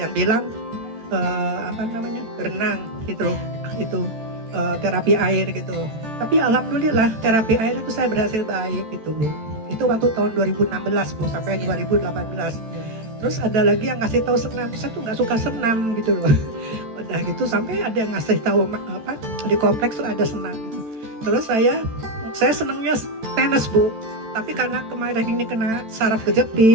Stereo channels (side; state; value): left; late; 14 ms